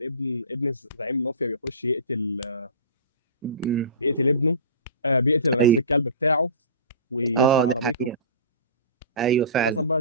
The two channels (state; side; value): inverted; both; correlation -0.35